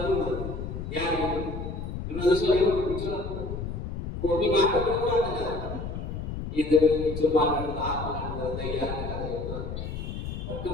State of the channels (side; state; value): left; noise; rumble, 6 dB below the sound